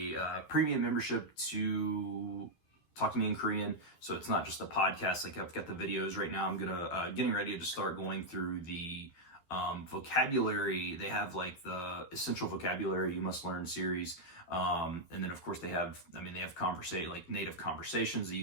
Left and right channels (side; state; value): right; late; 12 ms